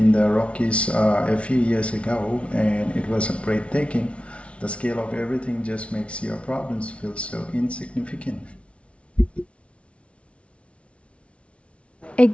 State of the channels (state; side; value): late; right; 0.061 ms